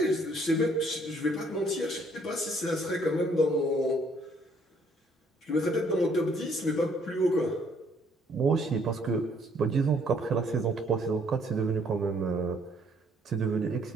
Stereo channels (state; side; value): normal; both; correlation 0.65